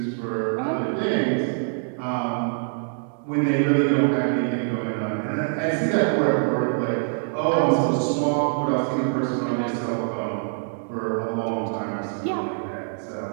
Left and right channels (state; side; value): silent; left; digital silence